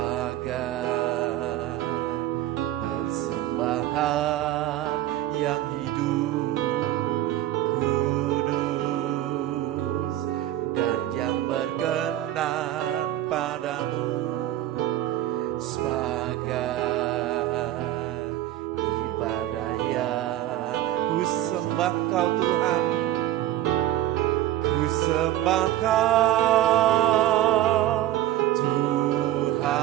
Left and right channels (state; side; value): quieter; left; 13.6 dB